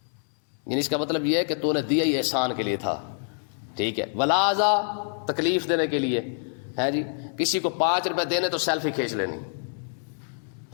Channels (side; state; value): right; silent; 61 dB below the other